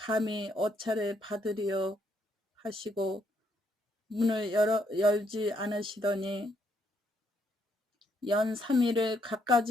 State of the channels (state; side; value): normal; both; correlation 0.73